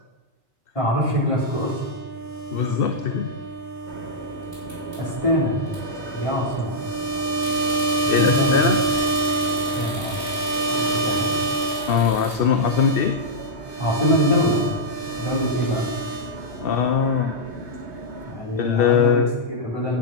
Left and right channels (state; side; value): normal; both; correlation -0.07